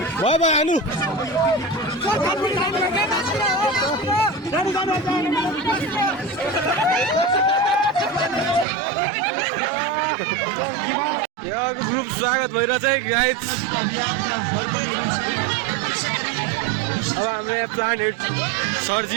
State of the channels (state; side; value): drops out; left; at 8.7 s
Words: भयो भयो हान्नु यहाँको ग्रुप स्वागत भइरहेछ है गाइज अब हाम्रो यहाँ प्लान्ट हेड